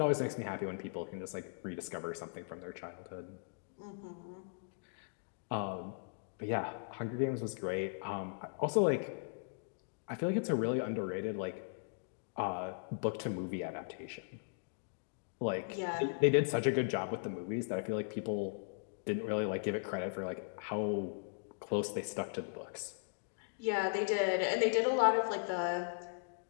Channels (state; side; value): silent; right; digital silence